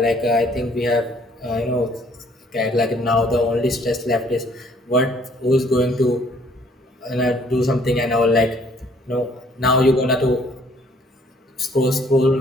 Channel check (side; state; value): both; normal; correlation 0.61